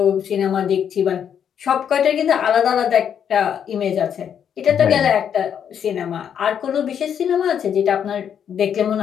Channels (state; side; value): quieter; right; 8.4 dB